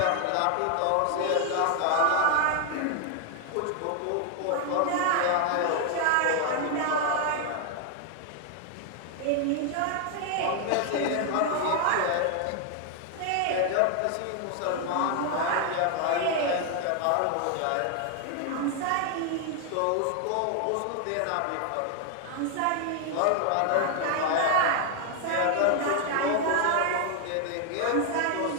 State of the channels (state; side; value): different; both; correlation 0.00